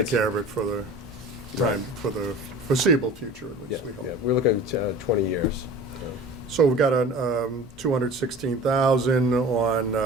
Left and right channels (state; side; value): normal; both; correlation 0.40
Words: care of it for the time, for the foreseeable future, at Yeah, least, we hope. yeah, we're looking at 20 years. So we've got a 216,000